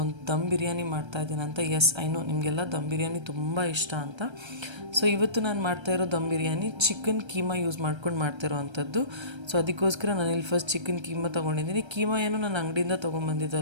ದಮ್ ಬಿರಿಯಾನಿ ಮಾಡ್ತಾ ಇದ್ದೀನಿ ಅಂತ. ಎಸ್, ಐ ನೋ ನಿಮಗೆಲ್ಲ ದಮ್ ಬಿರಿಯಾನಿ ತುಂಬ ಇಷ್ಟ ಅಂತ. ಸೊ ಇವತ್ತು ನಾನು ಮಾಡ್ತಾಯಿರೋ ದಮ್ ಬಿರಿಯಾನಿ ಚಿಕನ್ ಕೀಮಾ ಯೂಸ್ ಮಾಡ್ಕೊಂಡು ಮಾಡ್ತಿರೋ ಅಂಥದ್ದು. ಸೊ ಅದಕ್ಕೋಸ್ಕರ ನಾನು ಇಲ್ಲಿ ಫಸ್ಟ್ ಚಿಕನ್ ಕೀಮಾ ತೊಗೊಂಡಿದ್ದೀನಿ. ಕೀಮಾ ಏನು ನಾನು ಅಂಗಡಿಯಿಂದ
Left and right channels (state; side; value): late; left; 1.3 ms